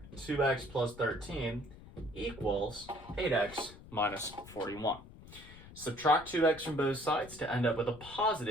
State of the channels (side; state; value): left; noise; rumble, 18 dB below the sound